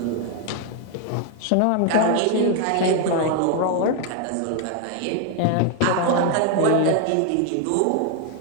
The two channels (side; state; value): both; different; correlation 0.01